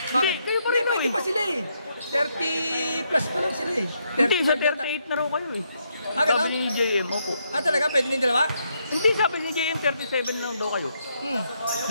Bakit? Kayo pa Hindi, rin pwede eh. pa sila eh. 30 plus pa lang sila eh. Hindi, sa 35 38 na raw kayo eh. Ah, ganun? Sabi ni JM, opo. Ah, talaga? Pwede na yung dalawa? Hindi, sabi ni JM, 37 na lang daw kayo.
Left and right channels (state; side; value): inverted; both; correlation -0.77